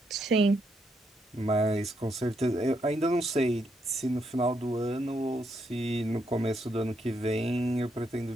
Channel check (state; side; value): normal; both; correlation 0.78